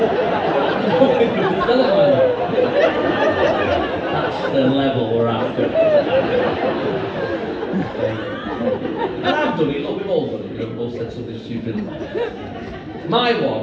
That's the level we're after. And I've done it, look, we've all done it, you know, we've all said something stupid. My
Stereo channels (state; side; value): identical; both; correlation 1.00